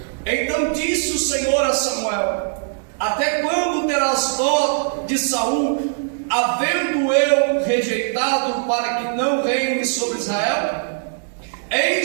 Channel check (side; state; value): left; silent; digital silence